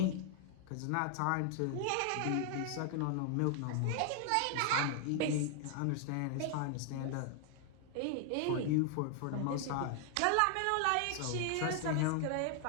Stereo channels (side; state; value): both; different; correlation 0.00